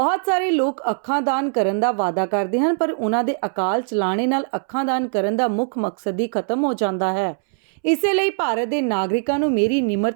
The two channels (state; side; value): silent; left; 65 dB below the other